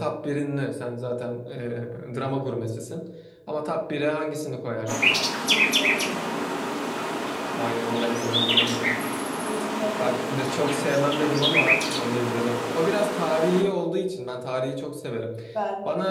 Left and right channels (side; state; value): both; identical; correlation 1.00